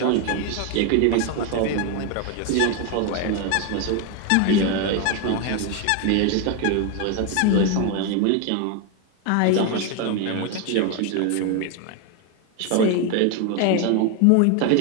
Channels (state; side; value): different; both; correlation 0.01